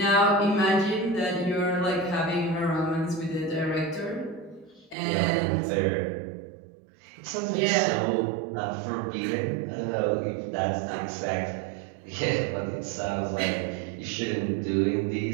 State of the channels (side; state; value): left; drops out; at 5.0 s